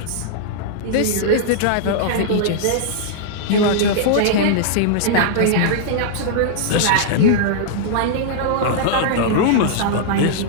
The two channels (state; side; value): different; both; correlation -0.02